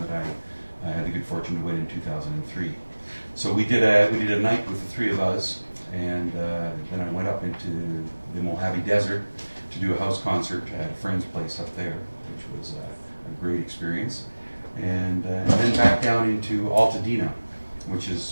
that I had the good fortune to win in 2003. So we did a night with the 3 of us, and then I went up into the Mojave Desert to do a house concert at a friend's place up there, which was a great experience. And then back down into Altadena, which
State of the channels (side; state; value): both; inverted; correlation -1.00